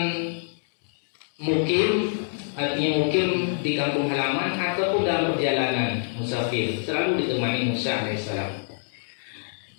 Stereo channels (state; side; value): silent; right; digital silence